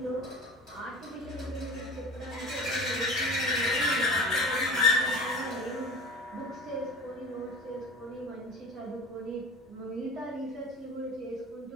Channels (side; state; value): both; normal; correlation 0.36